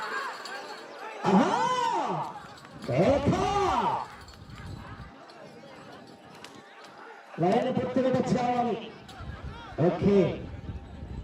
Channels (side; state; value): both; identical; correlation 1.00